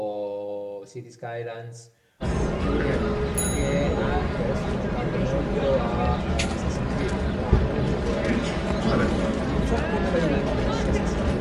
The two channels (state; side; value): identical; both; correlation 1.00